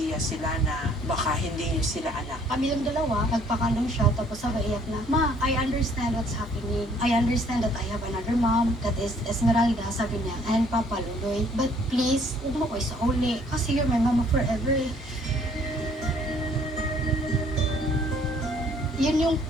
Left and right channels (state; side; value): normal; both; correlation 0.61